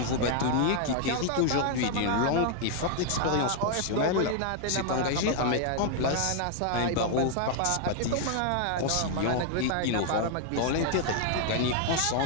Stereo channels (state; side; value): different; both; correlation 0.00